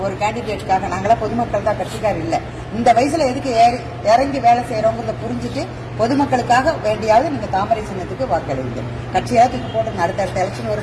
ஒரு கேண்டிடேட்டுக்காக. நாங்களாம் பொதுமக்கள் தான், கட்சிக்காரர் இல்ல. இந்த வயசுல எதுக்கு இறங்கி வேலை செய்யறோங்கிறத புரிஞ்சுட்டு பொதுமக்களுக்காக வேண்டியாவது நீங்க தாமரை சின்னத்துக்கு வாக்களிங்க. கட்சியாவது போட்டு அடுத்தடுத்த எலெக்ஷன்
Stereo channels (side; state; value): both; identical; correlation 1.00